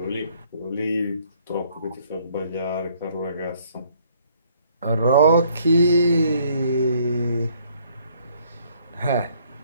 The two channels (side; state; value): both; inverted; correlation -0.64